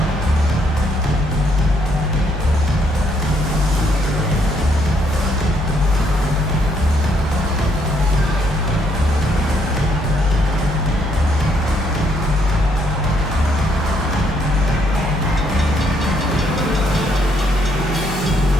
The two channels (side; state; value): both; normal; correlation 0.71